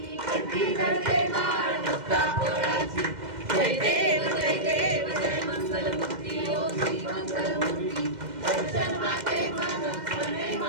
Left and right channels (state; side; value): late; left; 2.1 ms